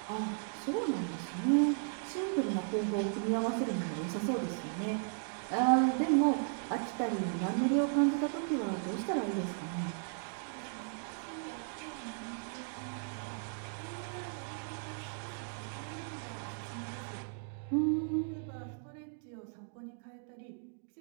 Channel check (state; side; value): silent; left; digital silence